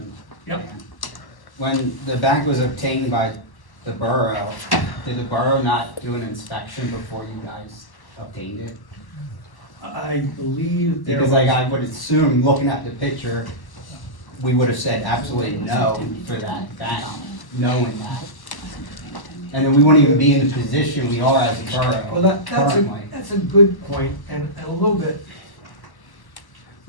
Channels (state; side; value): late; right; 1.1 ms